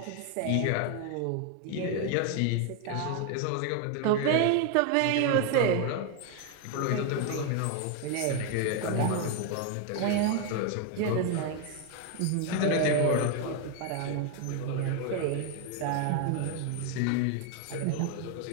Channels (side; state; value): both; different; correlation 0.01